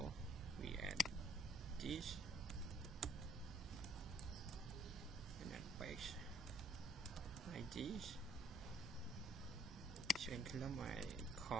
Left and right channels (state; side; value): normal; both; correlation 0.64